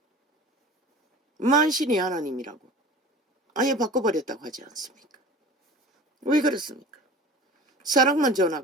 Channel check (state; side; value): normal; both; correlation 0.40